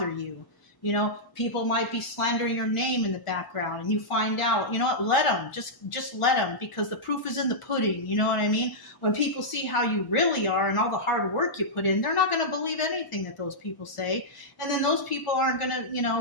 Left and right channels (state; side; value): late; right; 1.4 ms